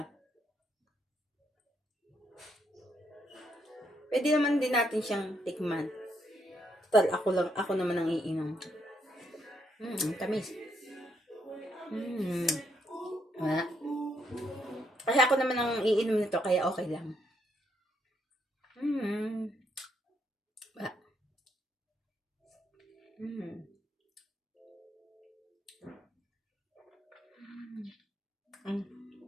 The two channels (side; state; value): both; normal; correlation 0.75